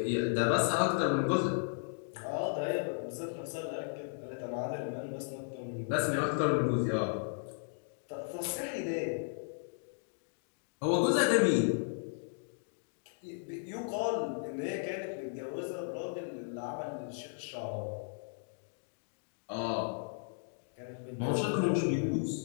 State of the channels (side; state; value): right; silent; digital silence